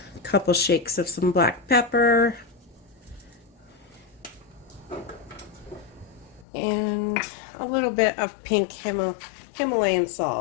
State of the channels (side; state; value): right; drops out; at 6.5 s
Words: couple shakes of some black pepper. And a little bit of pink Himalayan